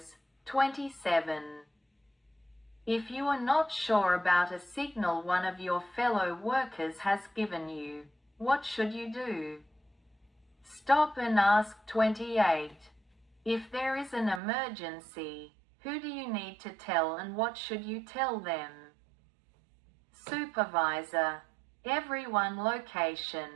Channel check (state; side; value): drops out; left; at 14.4 s